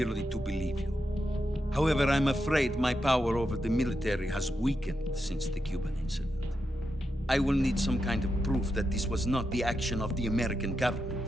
to believe you. However, I'm afraid my power over the military has weakened since the Cuban incident. I will need some kind of proof that this was not the action of the American government.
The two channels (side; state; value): both; normal; correlation 0.86